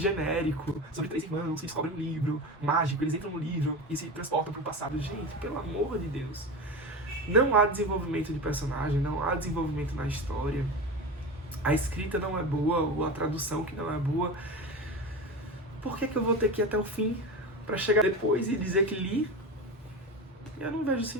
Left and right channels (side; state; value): both; normal; correlation 0.25